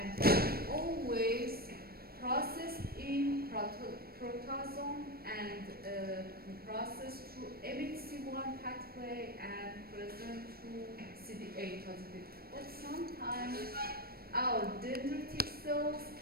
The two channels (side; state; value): left; late; 0.44 ms